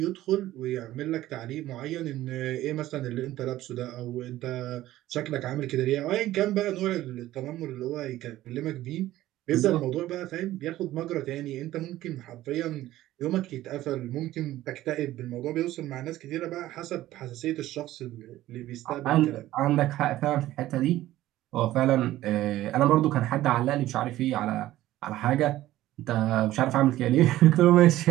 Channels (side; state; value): left; quieter; 15.0 dB